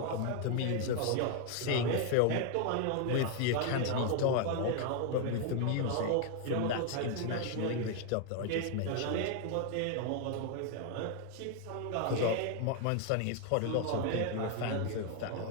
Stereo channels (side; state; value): both; different; correlation 0.00